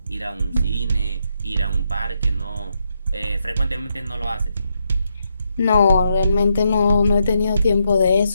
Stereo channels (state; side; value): inverted; both; correlation -0.80